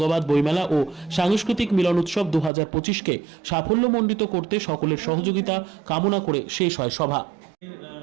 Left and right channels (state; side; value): drops out; left; at 2.5 s